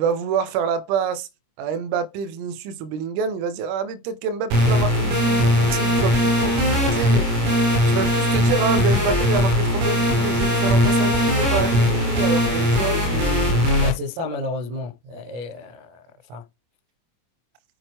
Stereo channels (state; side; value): late; left; 25 ms